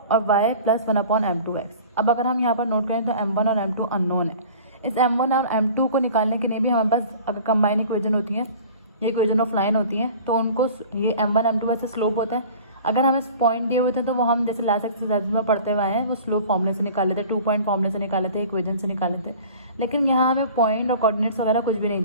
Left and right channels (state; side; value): inverted; both; correlation -0.44